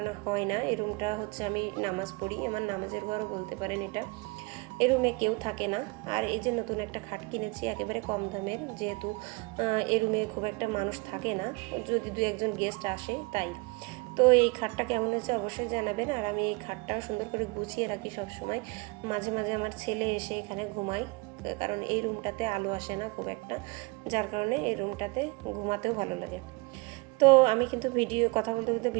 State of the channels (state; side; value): quieter; left; 27.5 dB